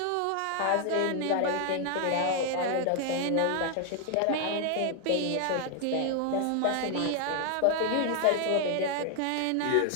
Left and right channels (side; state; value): both; different; correlation 0.00